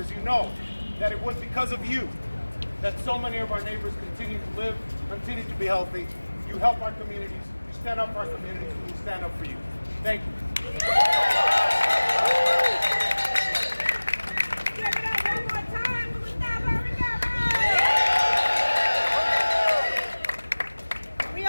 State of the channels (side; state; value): both; inverted; correlation -1.00